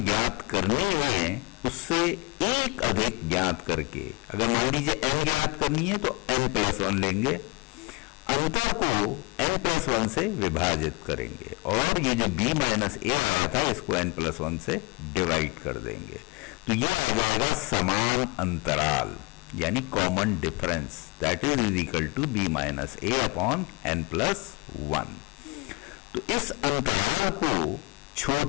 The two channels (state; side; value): quieter; right; 25.9 dB